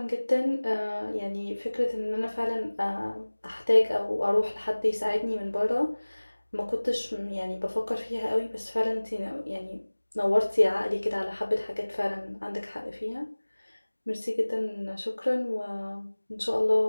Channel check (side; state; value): both; inverted; correlation -1.00